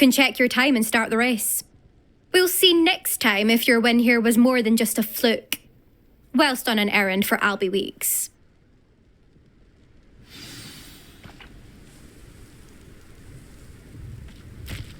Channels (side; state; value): both; identical; correlation 1.00